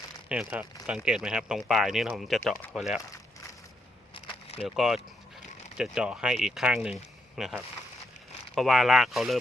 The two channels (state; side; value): normal; both; correlation 0.79